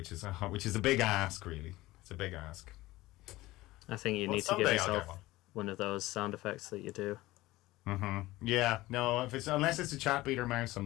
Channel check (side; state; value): right; quieter; 18.3 dB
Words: is a big ask, really. It's a big ask. I think you need to give yourself one of those sound effects that you do. Mm-hmm. Yeah. No. Unless it's a chat beater mouse, I'm